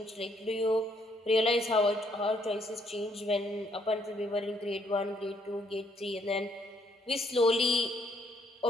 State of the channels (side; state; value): both; normal; correlation 0.70